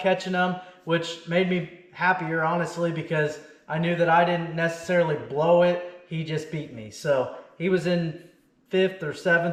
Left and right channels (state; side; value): identical; both; correlation 1.00